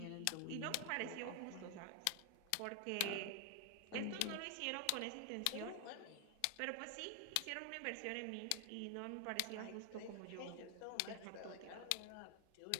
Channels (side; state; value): both; different; correlation 0.00